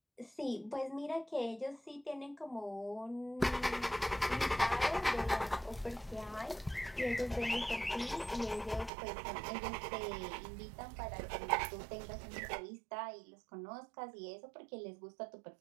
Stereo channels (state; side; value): drops out; left; at 8.9 s